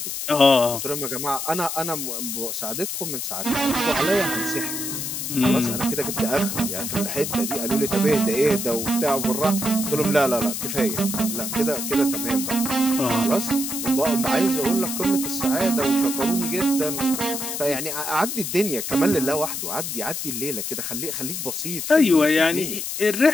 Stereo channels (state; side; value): noise; left; hiss, 4 dB below the sound